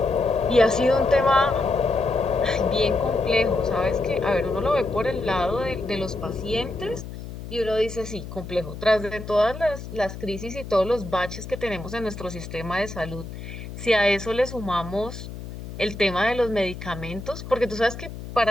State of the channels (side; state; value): left; noise; hum, 10 dB below the sound